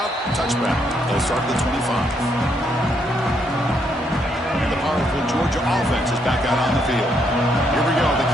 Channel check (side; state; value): both; normal; correlation 0.74